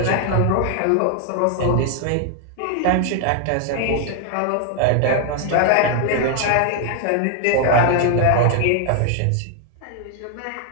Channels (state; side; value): different; both; correlation 0.00